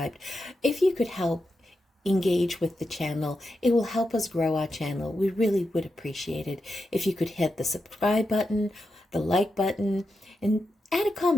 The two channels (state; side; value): normal; both; correlation 0.88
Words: If you could help engage with the channel, it will help us grow our channel. We really would appreciate it if you could hit the subscribe button, the like button, and add a